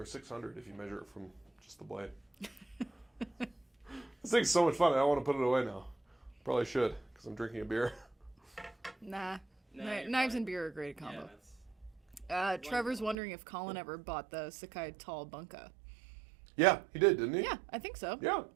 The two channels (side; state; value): left; drops out; at 13.2 s